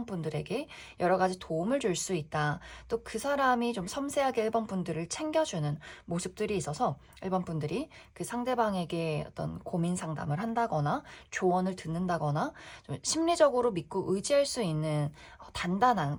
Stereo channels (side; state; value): both; identical; correlation 1.00